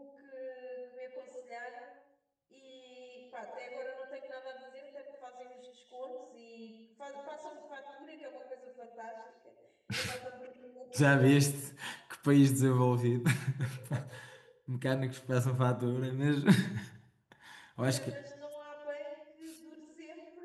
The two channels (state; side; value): identical; both; correlation 1.00